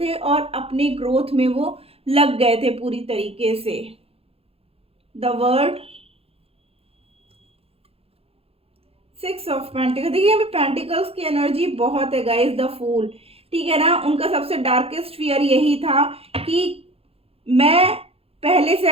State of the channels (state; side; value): late; left; 0.28 ms